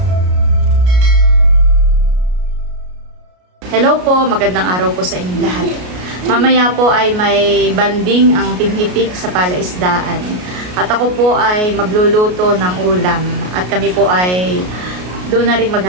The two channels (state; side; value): late; left; 33 ms